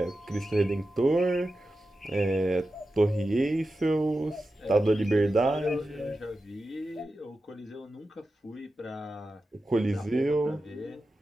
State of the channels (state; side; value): normal; both; correlation 0.92